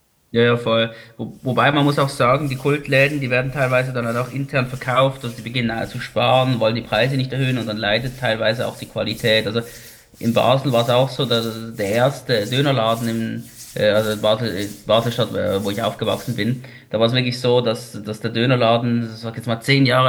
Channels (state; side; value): identical; both; correlation 1.00